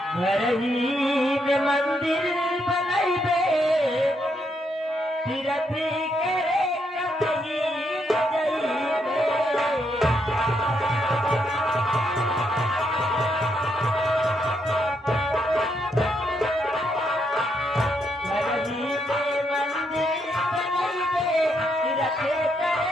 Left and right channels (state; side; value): normal; both; correlation 0.77